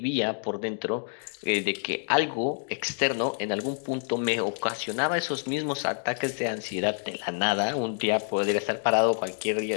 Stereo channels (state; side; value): silent; right; digital silence